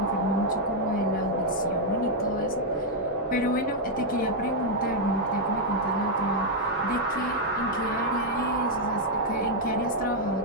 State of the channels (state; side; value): normal; both; correlation -0.02